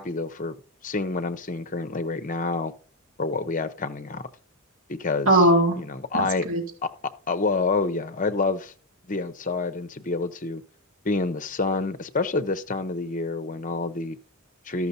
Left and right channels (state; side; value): normal; both; correlation 0.00